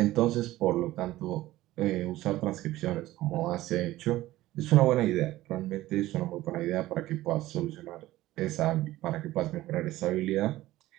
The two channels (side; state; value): left; quieter; 16.3 dB